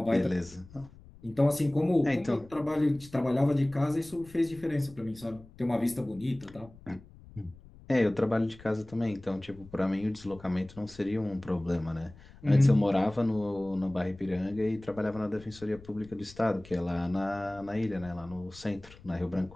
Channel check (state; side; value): noise; left; rumble, 21 dB below the sound